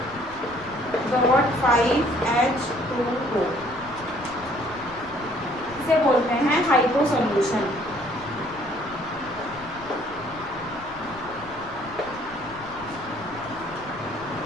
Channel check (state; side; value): noise; left; rumble, 20 dB below the sound